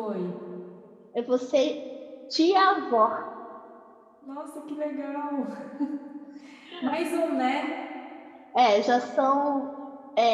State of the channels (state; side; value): identical; both; correlation 1.00